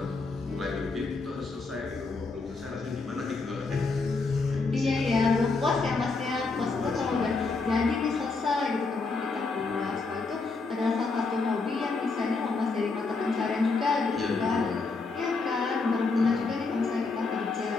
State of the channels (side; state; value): right; quieter; 4.0 dB